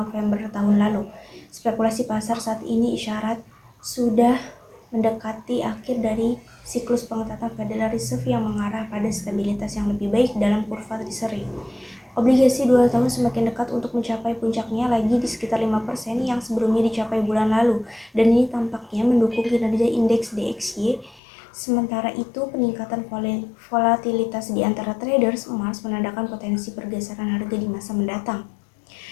tahun lalu. Spekulasi pasar saat ini isyarat sudah mendekati akhir dari siklus pengetatan Federal Reserve yang mengarah pada stabilitas yang lebih baik dalam kurva Treasury. Obligasi 2 tahun semakin dekat untuk mencapai puncaknya lagi di sekitar 5% yang sebelumnya dicapai bulan lalu, dan ini tampaknya mendukung kinerja indeks DXY. Sementara itu, peningkatan volatilitas di antara traders emas menandakan potensi pergeseran harga di masa mendatang.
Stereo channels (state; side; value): drops out; right; at 21.2 s